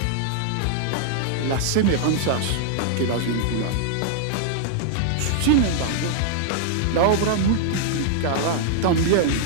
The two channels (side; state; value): both; different; correlation -0.01